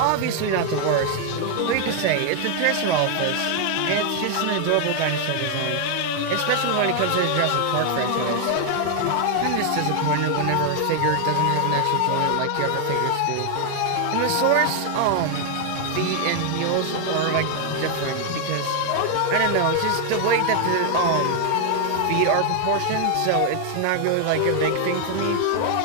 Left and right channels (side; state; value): both; different; correlation 0.00